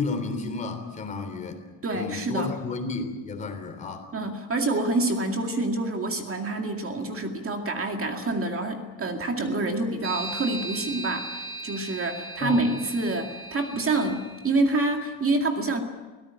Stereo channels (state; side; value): normal; both; correlation 0.30